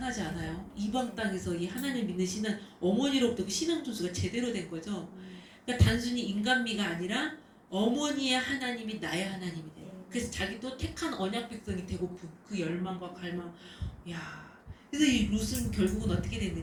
않아요? 이방 땅에서 이 하나님 믿는 신은 어머니로부터 그 신앙 전수가 제대로 된 거죠. 그러니까 단순히 인간미가 아니라 어머니의 하나님이 나의 하나님이 돼요. 그래서 자기도 택한 언약 백성이 되고픈 그 열망과 갈망. 야, 그래서 이 룻은 결국은 어떻게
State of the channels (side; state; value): both; identical; correlation 1.00